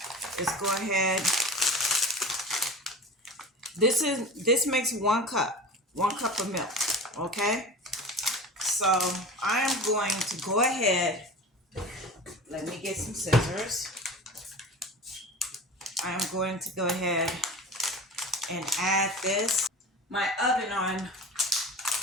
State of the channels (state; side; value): normal; both; correlation 0.35